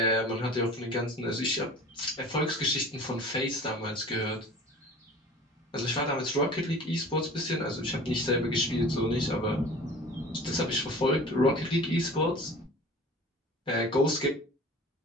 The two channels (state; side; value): normal; both; correlation 0.41